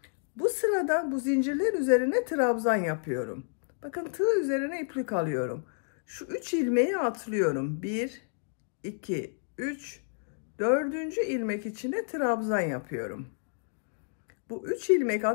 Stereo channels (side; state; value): right; silent; digital silence